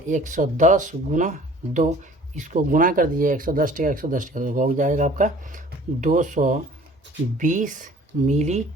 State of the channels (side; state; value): both; normal; correlation 0.50